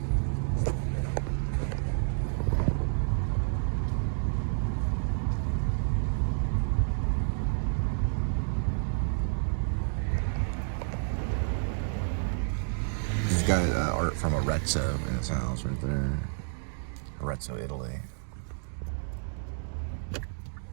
He's got art from Arezzo in his house right there. Arezzo, Italy.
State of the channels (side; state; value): left; silent; digital silence